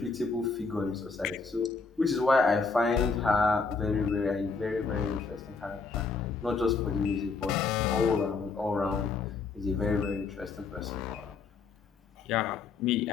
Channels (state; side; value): quieter; right; 4.6 dB